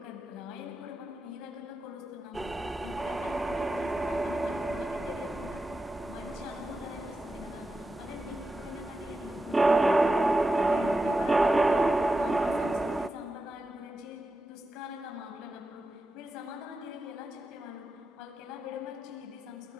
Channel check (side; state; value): both; normal; correlation 0.90